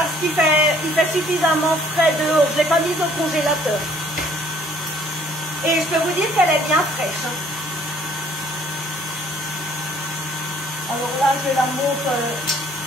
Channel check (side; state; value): both; normal; correlation 0.59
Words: qu'il fait suffisamment frais dehors. Je ne l'ai pas mise au congélateur. Et je peux vous dire qu'elle est bien fraîche. Alors là, je la monte